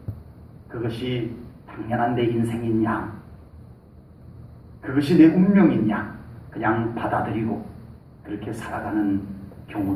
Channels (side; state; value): both; identical; correlation 1.00